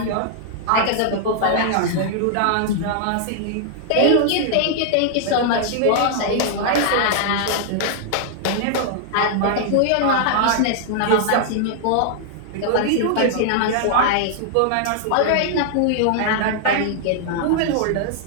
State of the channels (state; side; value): different; both; correlation -0.01